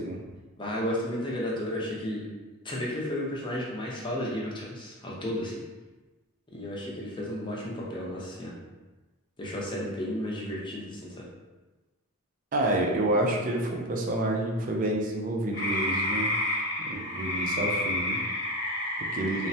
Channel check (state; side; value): normal; both; correlation 0.21